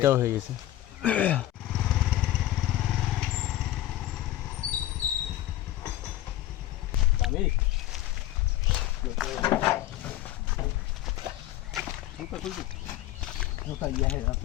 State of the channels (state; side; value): quieter; right; 14.2 dB